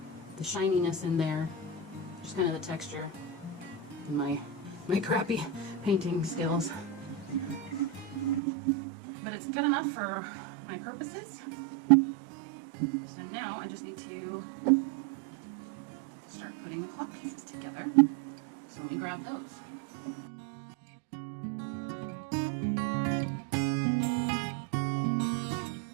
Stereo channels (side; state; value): left; drops out; at 8.4 s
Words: shininess in there, just kind of the texture and my crappy painting skills. But it's good enough for my purposes. So now I just need to start putting the clock pieces together. So let me grab those.